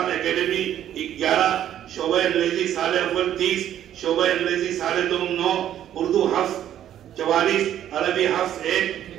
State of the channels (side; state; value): left; quieter; 11.0 dB